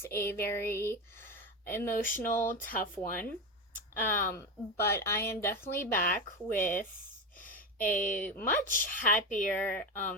a very emotional, tough one. But I am definitely back with a much happier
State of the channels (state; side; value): normal; both; correlation 0.18